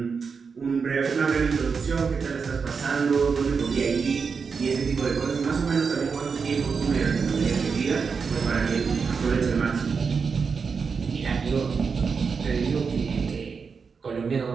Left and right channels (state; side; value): quieter; left; 5.5 dB